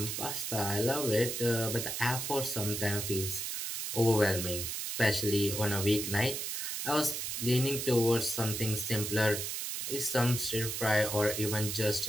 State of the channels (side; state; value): right; noise; hiss, 3 dB below the sound